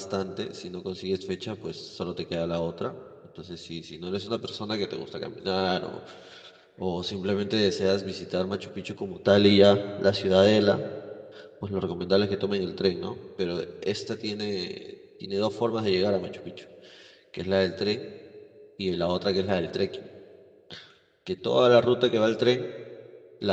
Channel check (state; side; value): identical; both; correlation 1.00